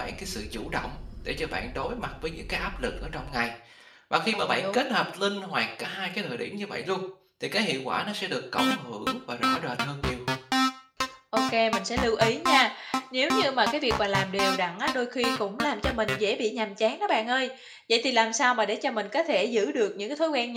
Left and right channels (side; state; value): both; identical; correlation 1.00